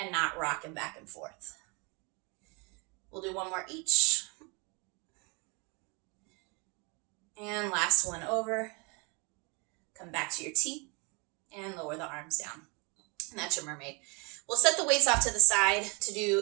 not rocking back and forth. We'll do one more each. And last one over. Come back to your T and lower the arms down. And that's your mermaid. We'll set the weights off to the side to do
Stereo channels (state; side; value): quieter; left; 30.9 dB